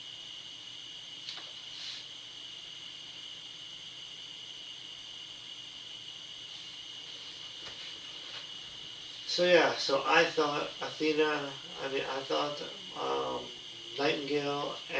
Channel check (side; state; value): both; identical; correlation 1.00